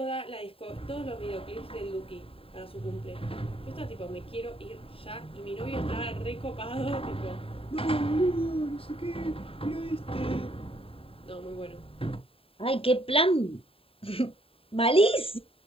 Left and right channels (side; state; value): right; late; 0.27 ms